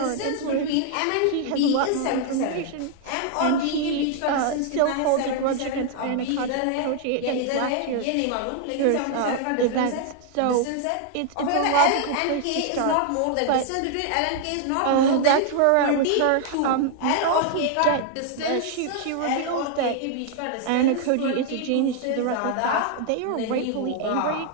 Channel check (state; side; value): different; both; correlation 0.00